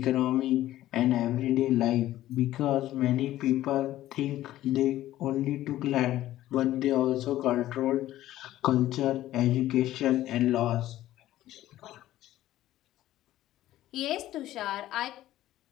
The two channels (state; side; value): quieter; right; 14.3 dB